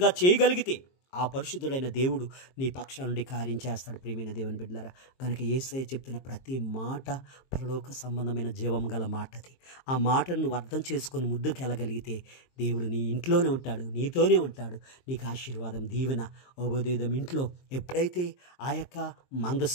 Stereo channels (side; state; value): right; late; 22 ms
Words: చేయగలిగితే ఆ పరిశుద్ధుడైన దేవుడు నీ పక్షాల నుండి కార్యం చేస్తాడు. ప్రియమైన దేవుని బిడ్డలారా, కనుక యేసయ్య చెప్తున్న ప్రతి మాట పరలోక సంబంధమైన జీవం గల మాట. అది ఆ మాటను నువ్వు అర్థం చేసుకొని ముందుకు వెళ్ళగలిగితే దేవుడు నీ ఇంట్లోనే ఉంటాడు, నీతోనే ఉంటాడు. నీకు ఆశీర్వాదం, దీవెన, ఉభయదేదం ఇంట్లో ఎప్పుడైతే ఆ యొక్క